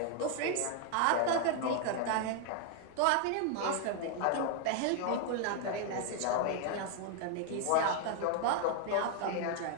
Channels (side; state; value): both; different; correlation 0.00